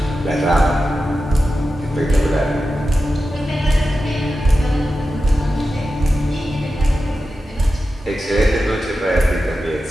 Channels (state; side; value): normal; both; correlation 0.92